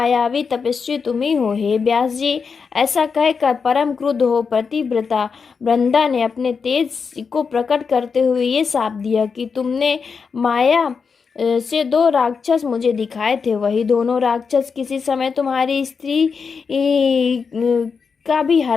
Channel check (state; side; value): quieter; right; 5.5 dB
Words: तपस्वी तुम ही हो। हे व्यास जी, ऐसा कहकर परम क्रुद्ध हो पतिव्रता वृंदा ने अपने तेज को प्रकट करते हुए ये शाप दिया कि तुमने माया से दो राक्षस मुझे दिखाए थे, वही दोनों राक्षस किसी समय तुम्हारी स्त्री का भी